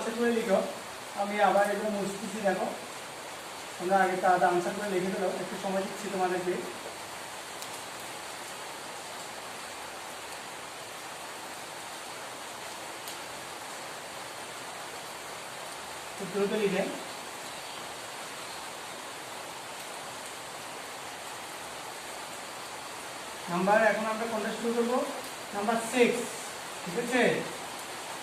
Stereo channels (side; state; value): both; identical; correlation 1.00